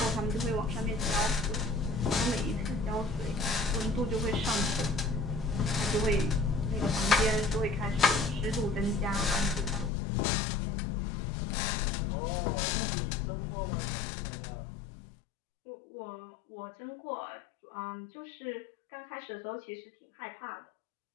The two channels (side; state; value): right; drops out; at 9.9 s